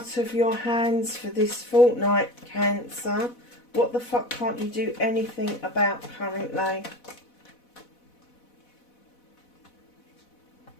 of your hands for this fortnight, Cancer? What the fuck can't you do anything about currently?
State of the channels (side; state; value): right; late; 4.1 ms